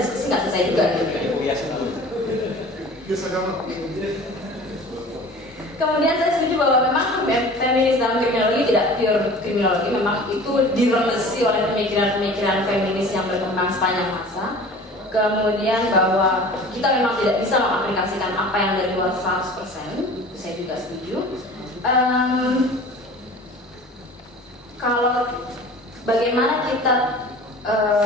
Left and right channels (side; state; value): both; normal; correlation 0.42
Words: nggak selesai juga gitu. Kemudian saya setuju bahwa memang feminis dalam kriminologi tidak pure kriminologi, memang itu diremesi oleh pemikiran-pemikiran feminis yang berkembang sepanjang masa. Kemudian bahwa kita memang tidak bisa mengaplikasikan apa yang dari luar 100%, itu saya juga setuju. Kalau bagaimana kita